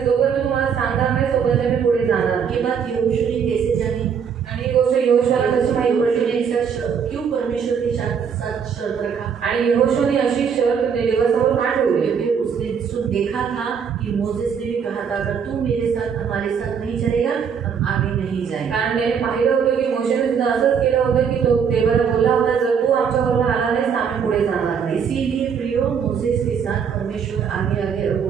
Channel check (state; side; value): quieter; left; 7.0 dB